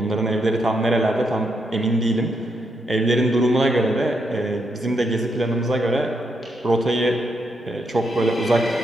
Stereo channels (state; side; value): normal; both; correlation 0.79